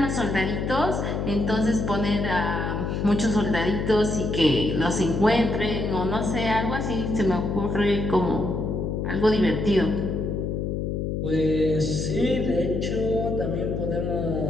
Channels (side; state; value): left; noise; hum, 1 dB below the sound